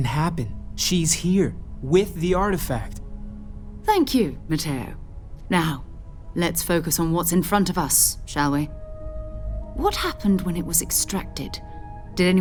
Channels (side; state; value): both; identical; correlation 1.00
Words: happen. She's here, with the artifact. Thank you, Matteo. Now, let's focus on what's in front of us, shall we? What happened when it was extracted? Did